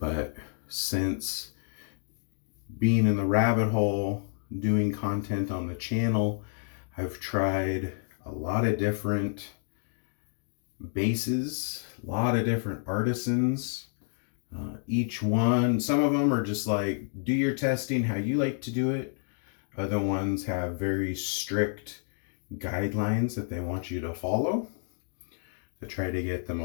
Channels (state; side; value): silent; right; digital silence